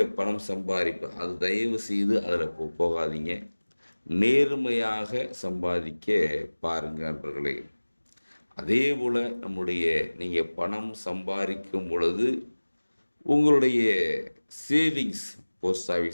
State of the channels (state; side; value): inverted; both; correlation -1.00